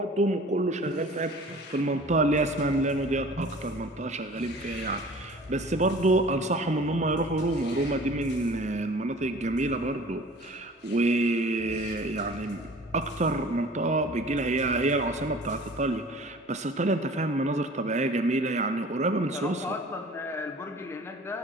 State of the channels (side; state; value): both; normal; correlation 0.45